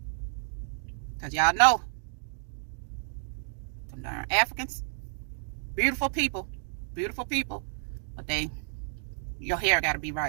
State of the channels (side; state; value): left; silent; digital silence